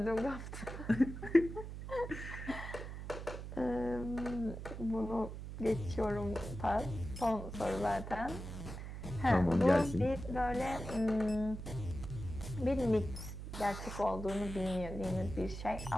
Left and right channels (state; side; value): noise; right; hum, 8 dB below the sound